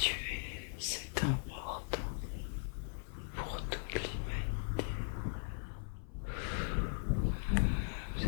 es, c'est important pour toute l'humanité. Vous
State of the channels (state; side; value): silent; right; 52 dB below the other